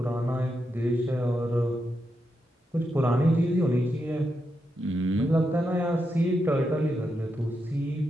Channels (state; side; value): normal; both; correlation 0.85